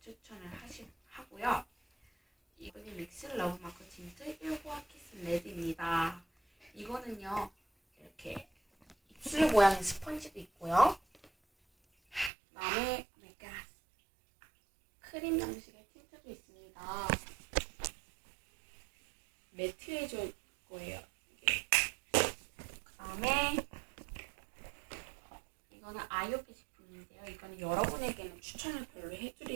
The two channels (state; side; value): drops out; left; at 12.3 s